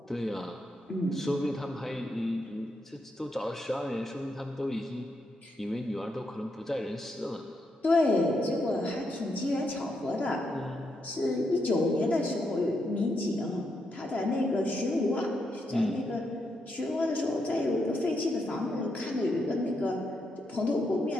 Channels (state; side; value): normal; both; correlation 0.81